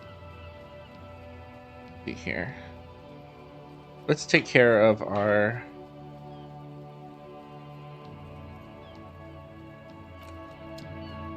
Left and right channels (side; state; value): both; identical; correlation 1.00